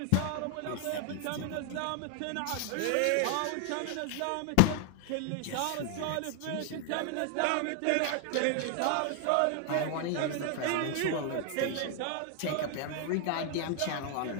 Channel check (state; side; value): different; both; correlation 0.00